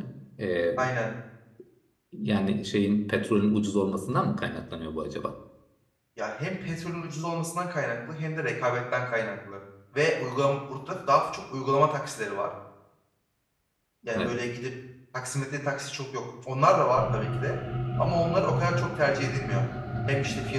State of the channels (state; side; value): identical; both; correlation 1.00